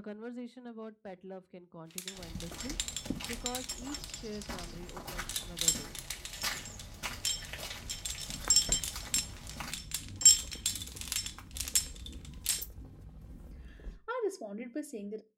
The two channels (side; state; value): both; identical; correlation 1.00